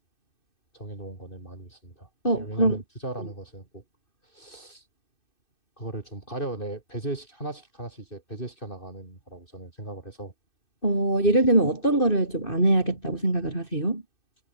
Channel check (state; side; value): late; right; 2.6 ms